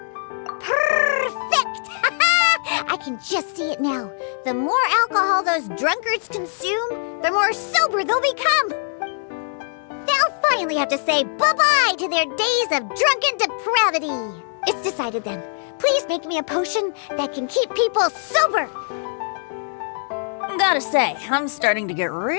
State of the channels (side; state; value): right; silent; digital silence